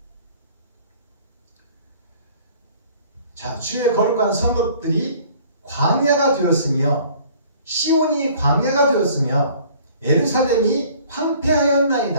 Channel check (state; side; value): inverted; both; correlation -0.53